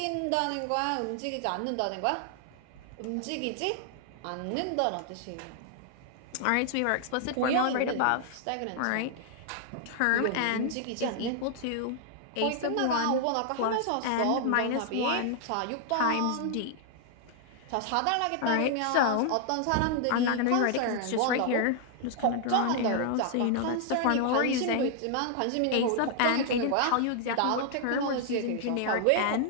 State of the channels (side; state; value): both; different; correlation 0.00